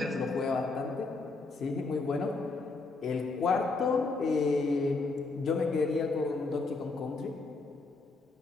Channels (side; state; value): right; quieter; 3.8 dB